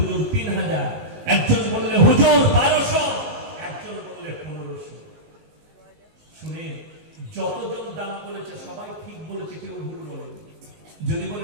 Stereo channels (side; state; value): left; late; 19 ms